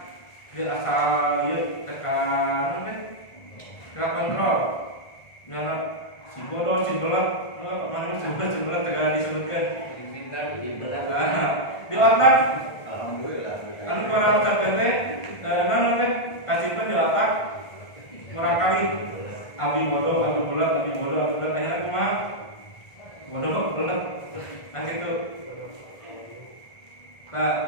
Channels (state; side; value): late; right; 1.5 ms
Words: dia asal yuk tekan kontrol nyara si bodoh si belak mana si belak tekan disebutkan di otak anu para ucapan teh naon teh kasihkan di otak merangkali abi bodoh abi belak akhirnya kumaha bodoh belak nah gitu. Nah,